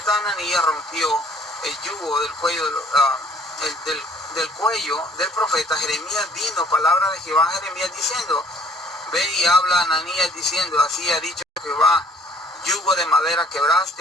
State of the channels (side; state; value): both; normal; correlation 0.57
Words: Ananías rompió el yugo del cuello, del cuello del profeta, Jeremías vino palabra de Jehová a Jeremías diciendo: ve y habla a Ananías diciendo: así ha dicho Jehová, yugo de madera